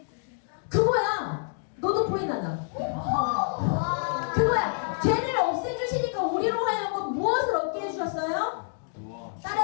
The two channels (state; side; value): silent; right; digital silence